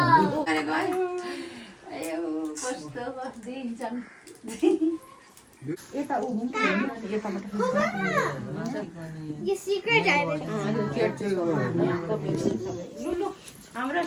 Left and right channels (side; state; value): both; identical; correlation 1.00